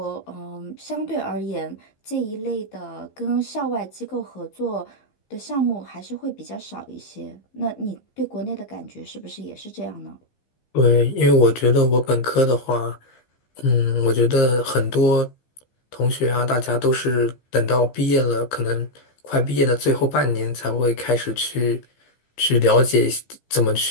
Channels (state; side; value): late; right; 15 ms